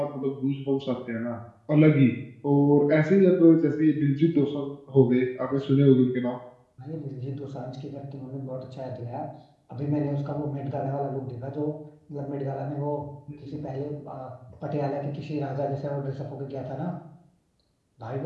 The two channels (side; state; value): both; identical; correlation 1.00